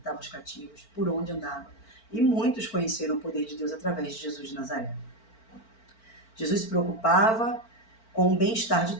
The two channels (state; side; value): late; right; 4.4 ms